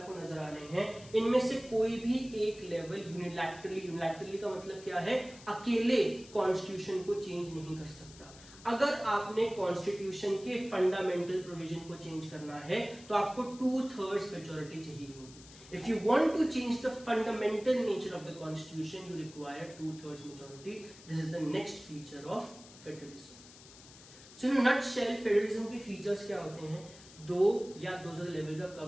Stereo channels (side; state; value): left; noise; hiss, 20 dB below the sound